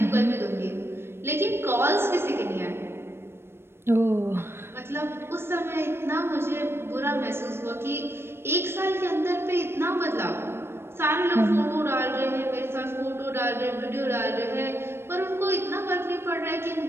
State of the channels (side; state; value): left; late; 0.12 ms